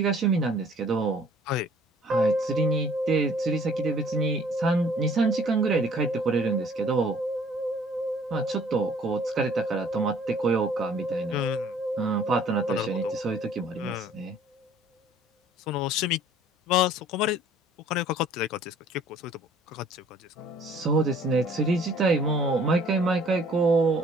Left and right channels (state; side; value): normal; both; correlation 0.55